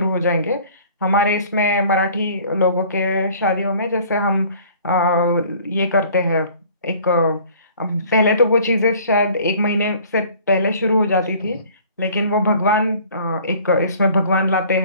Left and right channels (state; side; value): inverted; both; correlation -0.52